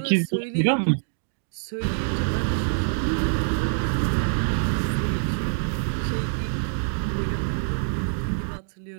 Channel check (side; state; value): left; silent; digital silence